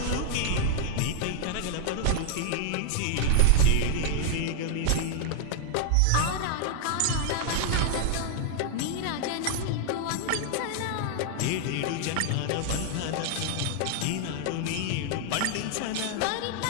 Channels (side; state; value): both; different; correlation -0.01